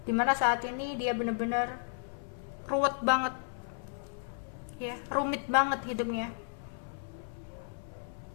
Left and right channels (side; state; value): right; silent; 55 dB below the other